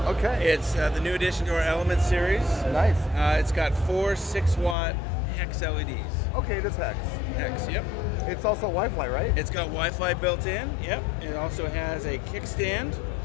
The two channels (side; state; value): right; drops out; at 4.8 s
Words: Okay. It's the new addition to our Element series. Nice. It's got 4 6-watt hex LEDs. Okay, it is hex. Hex, yep. It's also Wi-Fi, right? It's got Wi-Fi built in. Yep. It also has a kickstand.